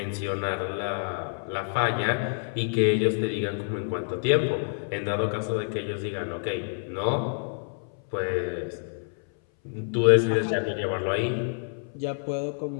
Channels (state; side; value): silent; right; 59 dB below the other